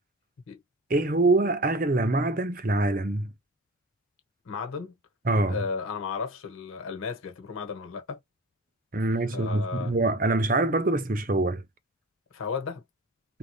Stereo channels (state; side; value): normal; both; correlation 0.36